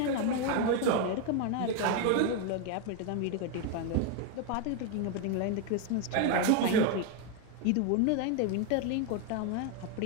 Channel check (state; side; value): different; both; correlation 0.01